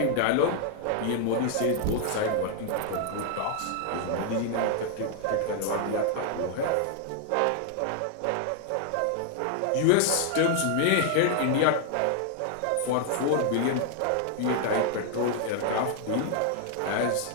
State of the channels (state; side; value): different; both; correlation 0.00